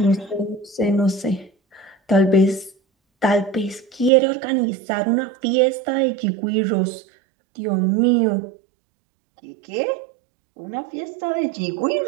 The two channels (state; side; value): drops out; left; at 4.1 s